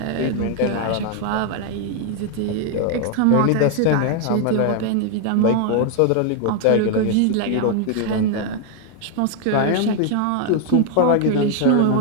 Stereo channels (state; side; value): different; both; correlation 0.00